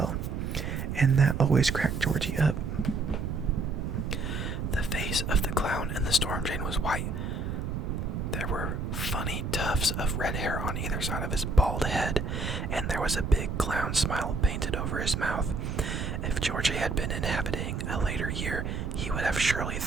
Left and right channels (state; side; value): noise; right; rumble, 3 dB below the sound